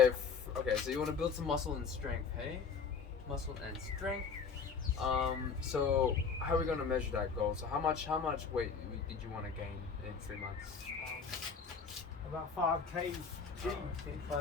okay. So you want to build some muscle and strength, hey? Muscle and strength. So how are we going to measure that goal? So how much weight did you want to gain in 3 months? About 5 kg. Okay,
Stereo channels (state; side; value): quieter; right; 5.7 dB